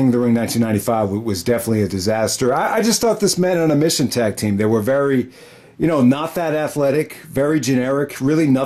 of the Ring 1995 was definitely a disaster. I just thought this Men on a Mission tag team, they were very, you know, not that athletic, very generic, really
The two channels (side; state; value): both; identical; correlation 1.00